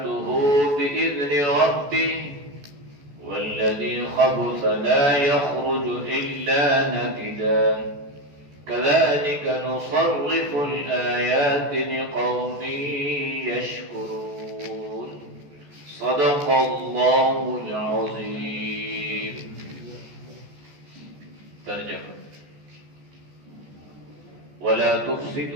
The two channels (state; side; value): late; left; 14 ms